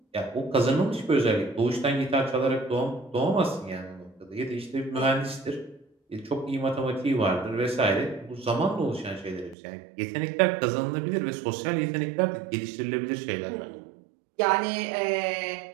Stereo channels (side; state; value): left; drops out; at 9.6 s